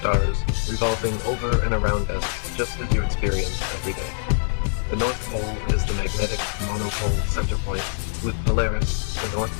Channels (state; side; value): silent; right; 63 dB below the other